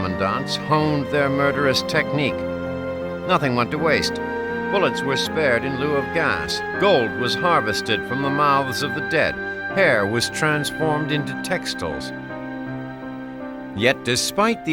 honed their murderous technique. Nothing went to waste. Bullets were spared in lieu of gas. Gold was harvested from the mouths of the dead. Hair was transformed into textiles. Yet despite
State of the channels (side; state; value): both; identical; correlation 1.00